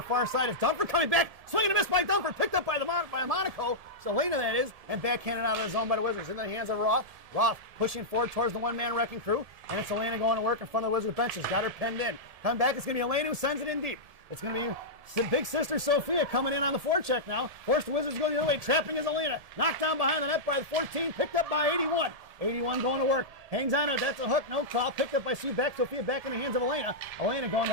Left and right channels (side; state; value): left; late; 1.7 ms